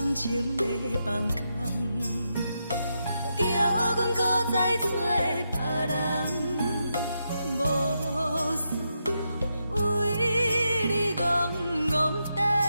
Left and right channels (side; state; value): both; inverted; correlation -0.84